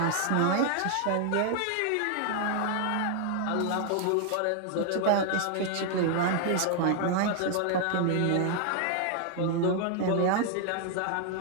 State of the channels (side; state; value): both; different; correlation 0.00